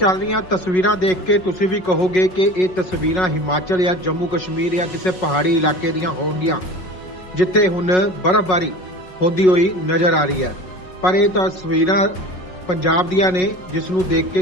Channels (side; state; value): right; late; 5.4 ms